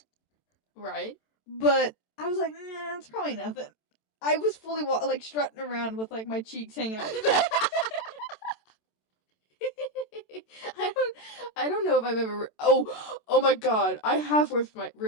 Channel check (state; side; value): late; right; 27 ms